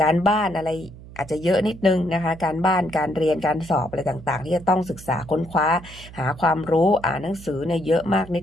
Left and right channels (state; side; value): noise; right; hum, 17 dB below the sound